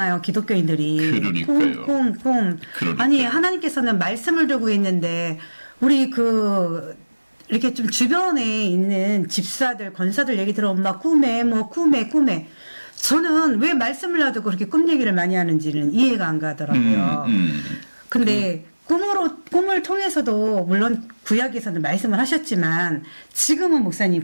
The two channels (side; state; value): both; inverted; correlation -1.00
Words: 기독교인들이. 그러니까요. 꿈. 그러니까요. 아니, 하나님께서는 말씀을 두고 있는데, 우리 이렇게 좀 주변에 있는 집사들, 권사들 얘기 들어보면 막 꿈에. 저는 왜 말씀을 놔두고 그렇게 꿈 얘기를 많이 하는지는 이해가 안 가더라고요. 근데 꿈을 통해서도 물론 구약에서는 말씀을 하셨지만 지금은 목사님